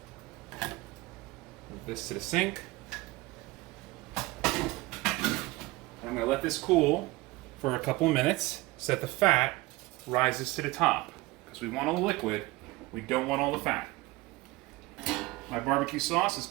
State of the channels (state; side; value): quieter; left; 20.7 dB